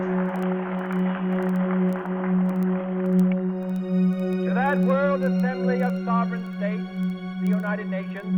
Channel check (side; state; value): both; identical; correlation 1.00